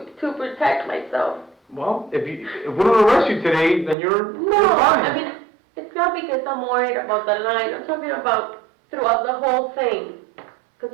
protect myself? Well, if we don't arrest you today, then you're fine. I mean, it's not because I'm worried about the line. I'm talking about throughout the whole thing.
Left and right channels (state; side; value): drops out; left; at 4.0 s